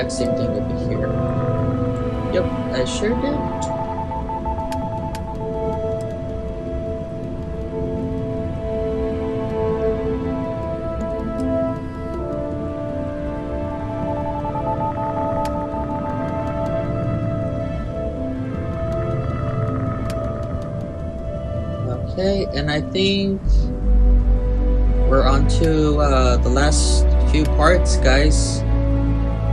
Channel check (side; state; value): both; identical; correlation 1.00